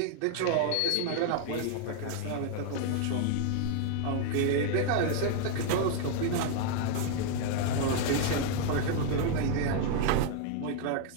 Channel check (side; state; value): both; different; correlation 0.00